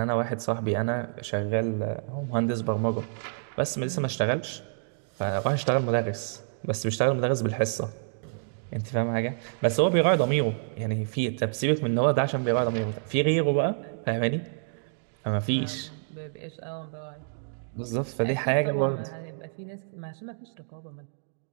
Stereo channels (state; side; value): silent; left; digital silence